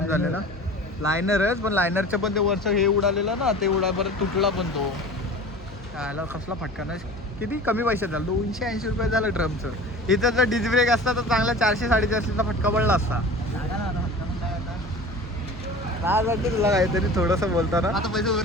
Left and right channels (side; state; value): both; normal; correlation 0.38